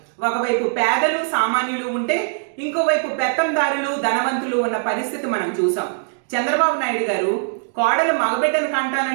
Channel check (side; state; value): left; silent; digital silence